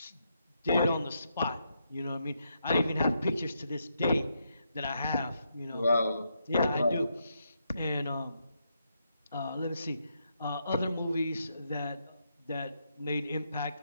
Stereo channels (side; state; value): both; inverted; correlation -0.80